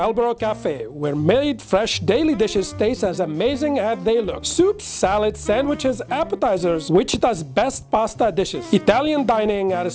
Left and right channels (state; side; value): identical; both; correlation 1.00